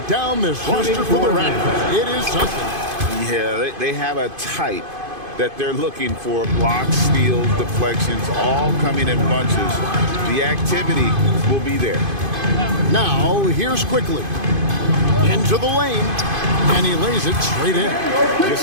down this roster for the Raptors. It is something. Yeah, they have a type that they're looking for. Blocks, steals, deflections, all coming in bunches. The activity will be there. Now, here's quickly. Into the lane, and he lays it straight in.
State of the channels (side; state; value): left; late; 2.5 ms